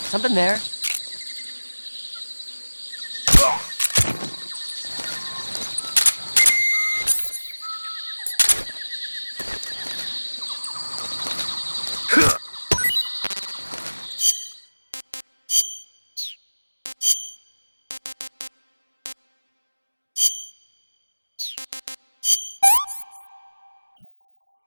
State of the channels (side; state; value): both; inverted; correlation -1.00